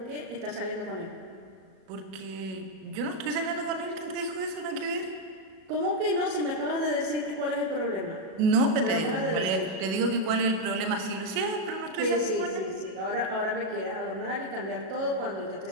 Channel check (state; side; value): late; left; 37 ms